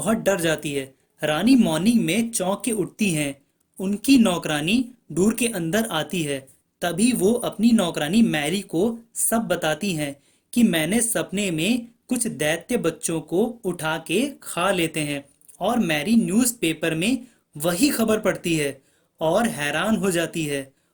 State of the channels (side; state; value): both; identical; correlation 1.00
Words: डर जाती है। रानी मॉर्निंग में चौंक के उठती हैं। उनकी नौकरानी दूर के अंदर आती है। तभी वो अपनी नौकरानी मैरी को सब बताती हैं कि मैंने सपने में कुछ दैत्य बच्चों को उठा के खा लेते हैं, और मैरी न्यूज़पेपर में वही खबर पढ़ती है और हैरान हो जाती है